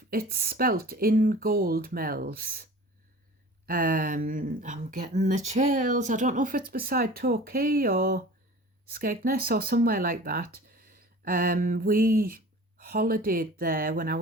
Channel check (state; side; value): normal; both; correlation 0.42